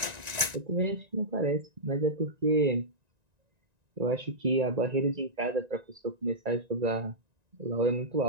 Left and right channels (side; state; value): left; late; 1.9 ms